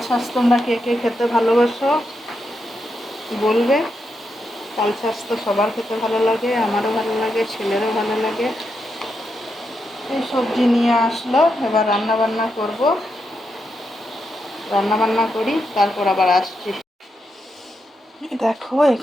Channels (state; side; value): normal; both; correlation 0.84